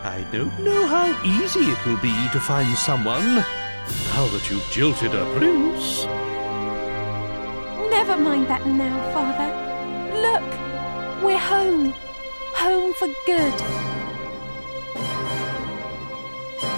I don't know how easy it will be to find someone now that you've jilted a prince. Never mind that now, Father. Look, we're home. Home for good.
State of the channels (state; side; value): inverted; both; correlation -1.00